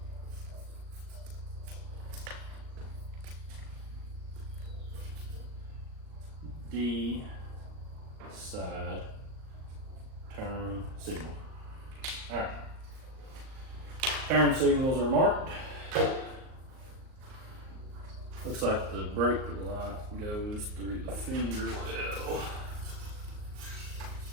D side turn signal. All right. Turn signals are marked. Looks like the brake light goes through the fender well.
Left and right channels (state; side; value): late; left; 38 ms